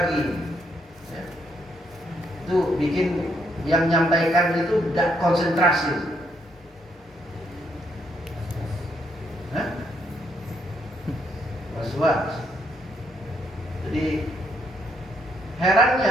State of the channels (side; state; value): both; normal; correlation 0.74